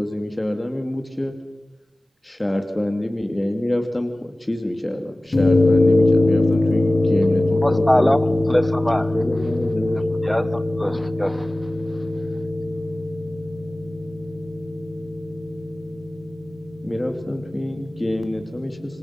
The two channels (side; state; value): both; normal; correlation 0.98